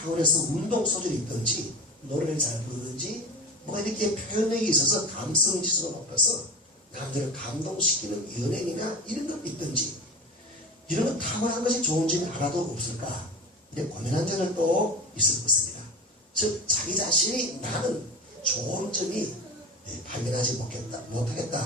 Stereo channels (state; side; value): normal; both; correlation 0.31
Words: 운동 소질이 있든지 노래를 잘 부르든지 뭐가 이렇게 표현력이 있어서 감성지수가 높아서 남들을 감동시키는 연예인이나 이런 것 있든지 이런 것 탁월한 것이 좋은 점이 하나도 없을까? 이렇게 고민한 자들도 있을 것입니다. 즉 자기 자신이 나는 좋은 점이 발견하지